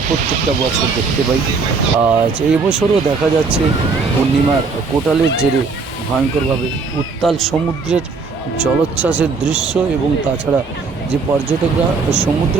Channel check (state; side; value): quieter; left; 4.5 dB